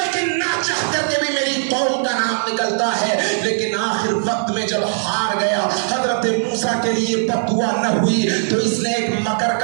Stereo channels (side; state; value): left; silent; digital silence